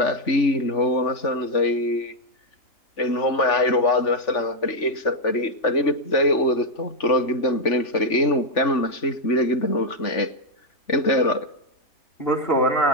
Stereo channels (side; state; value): right; late; 3.5 ms